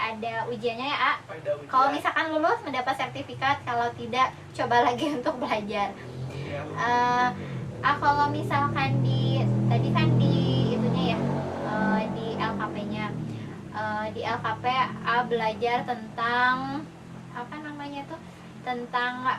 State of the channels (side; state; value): both; identical; correlation 1.00